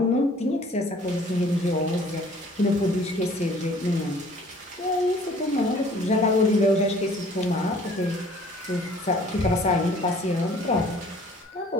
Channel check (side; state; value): both; normal; correlation 0.53